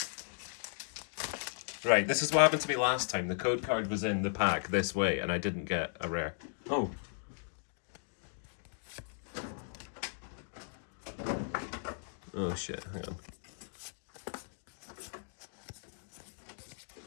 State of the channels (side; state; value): right; silent; digital silence